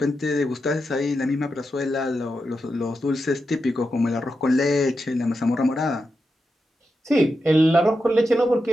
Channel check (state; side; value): normal; both; correlation 0.88